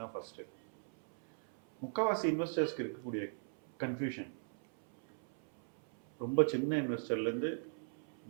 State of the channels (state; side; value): silent; left; 52 dB below the other